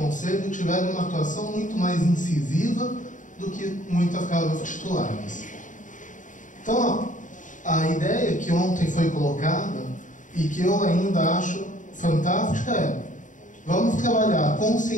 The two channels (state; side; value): late; right; 0.37 ms